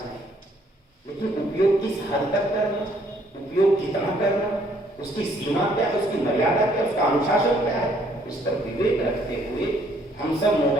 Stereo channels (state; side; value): normal; both; correlation 0.65